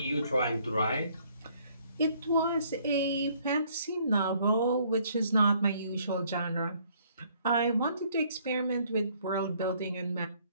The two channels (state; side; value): inverted; both; correlation -0.64